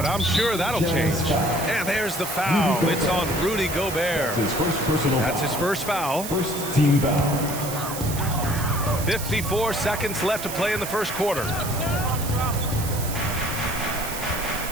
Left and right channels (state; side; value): noise; right; hiss, 8 dB below the sound